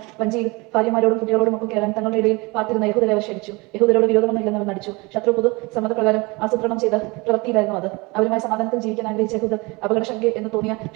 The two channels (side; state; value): left; quieter; 25.6 dB